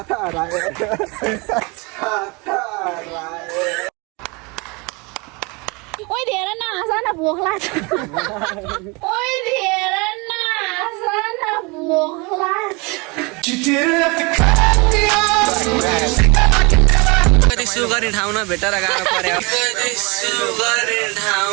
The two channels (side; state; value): left; quieter; 28.0 dB